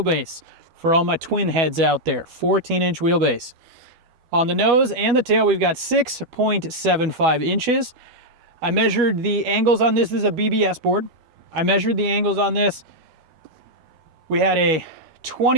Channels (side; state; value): left; late; 12 ms